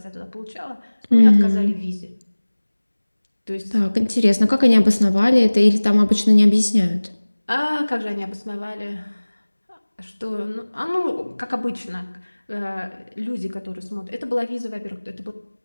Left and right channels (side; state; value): both; inverted; correlation -1.00